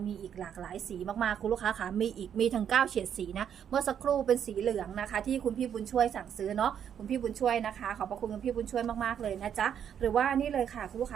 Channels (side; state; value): left; quieter; 8.8 dB